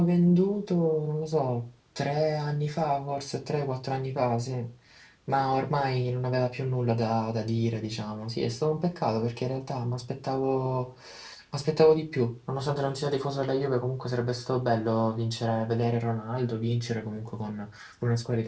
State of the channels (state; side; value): identical; both; correlation 1.00